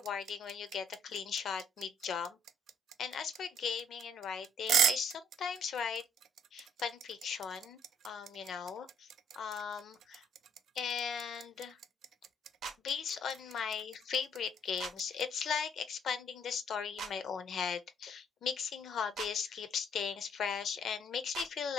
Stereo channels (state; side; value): normal; both; correlation 0.65